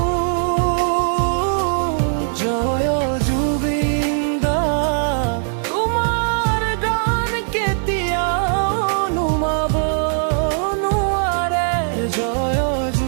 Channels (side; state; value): left; silent; digital silence